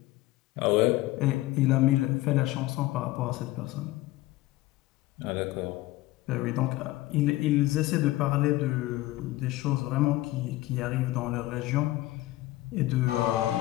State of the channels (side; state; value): right; quieter; 17.5 dB